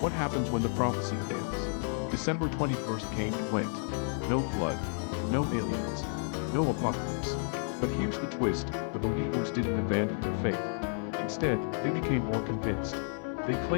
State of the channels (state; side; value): silent; right; 57 dB below the other